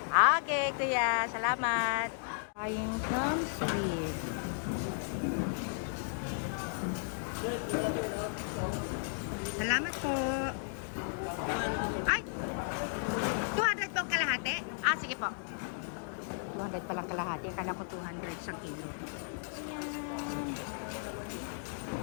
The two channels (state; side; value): silent; right; digital silence